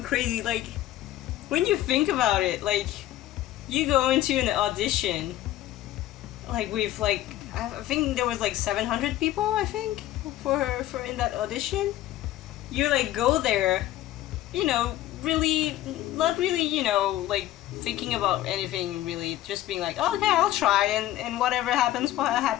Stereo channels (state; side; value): quieter; right; 14.4 dB